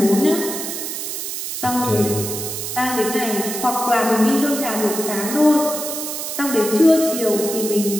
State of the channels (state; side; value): noise; right; hiss, 5 dB below the sound